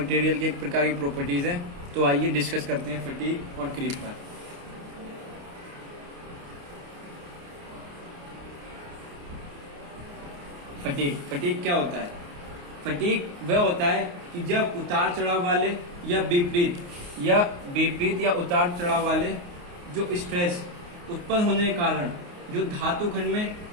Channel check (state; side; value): late; left; 29 ms